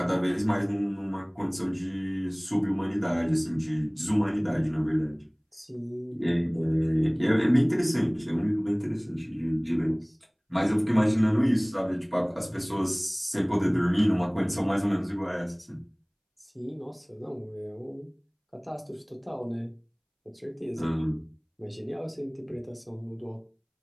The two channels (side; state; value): both; identical; correlation 1.00